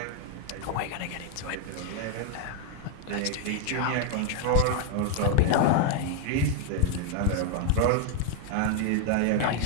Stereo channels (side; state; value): both; different; correlation 0.00